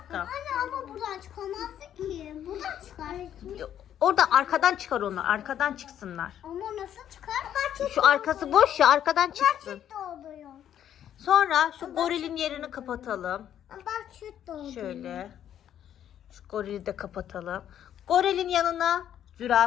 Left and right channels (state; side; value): quieter; right; 10.3 dB